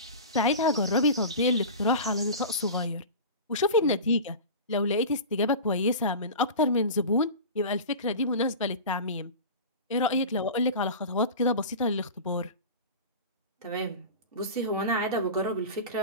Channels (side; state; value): both; inverted; correlation -0.31